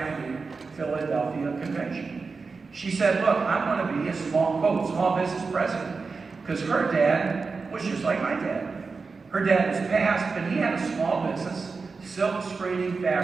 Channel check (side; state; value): left; quieter; 4.5 dB